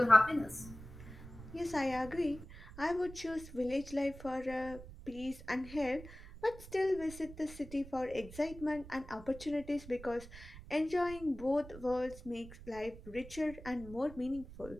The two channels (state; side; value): noise; right; rumble, 15 dB below the sound